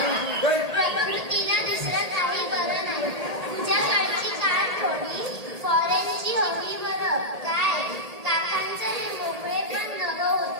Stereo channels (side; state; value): left; late; 1.8 ms